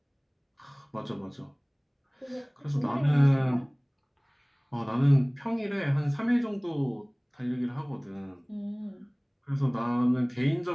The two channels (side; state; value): both; identical; correlation 1.00